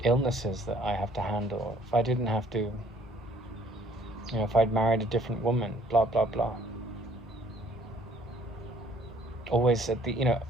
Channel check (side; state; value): both; normal; correlation 0.59